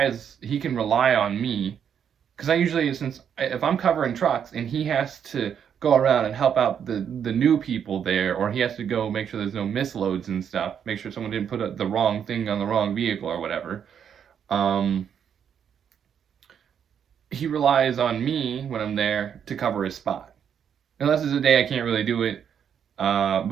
can rely on me, because I usually, if I'm covering trucks and he has to go around and help out the new people there, or he has to go make sure there's no misloads and stuff, make sure someone didn't put the wrong thing on the wrong vehicle or whatever, he relies on me when I'm there to cover his spot. Unless it's a day I can't really do it,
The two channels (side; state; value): left; quieter; 8.2 dB